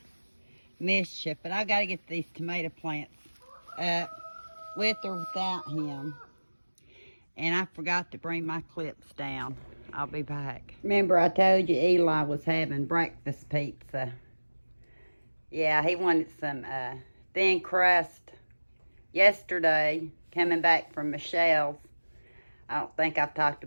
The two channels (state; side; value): inverted; both; correlation -1.00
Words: mischief. But I got to get these tomato plants up with or without him. And I forgot to bring my clips down. I'll be back. Remember I told you Eli was having breakfast pizza. Yeah, he wanted some thin crust yesterday, coming back from Michelle's. I don't think I've talked